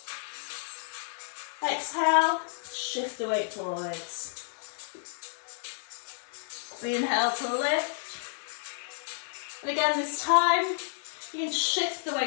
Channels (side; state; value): right; silent; 57 dB below the other